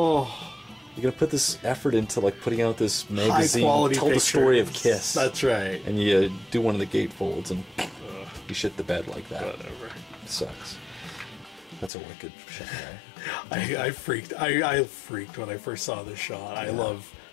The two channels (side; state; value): right; drops out; at 11.9 s